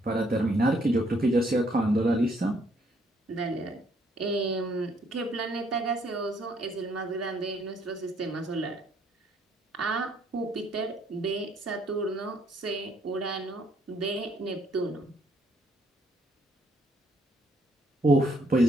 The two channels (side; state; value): both; normal; correlation 0.68